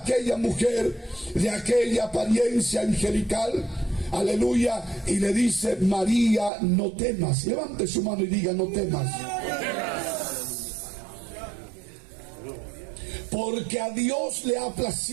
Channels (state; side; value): drops out; left; at 6.5 s